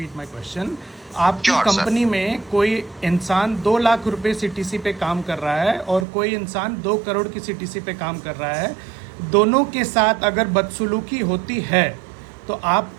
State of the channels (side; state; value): left; drops out; at 6.1 s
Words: my question. आपकी Sure, कंपनी में कोई इंसान 2 लाख रुपए सीटीसी पे काम कर रहा है और कोई इंसान 2 करोड़ की सीटीसी पे काम कर रहा है। दोनों के साथ अगर बदसलूकी होती है तो आप